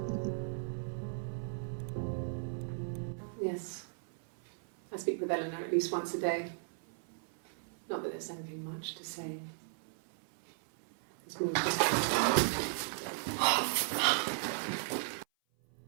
Yes. I speak with Eleanor at least once a day. Not that there's anything much to say. It's more just...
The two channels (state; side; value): silent; left; 54 dB below the other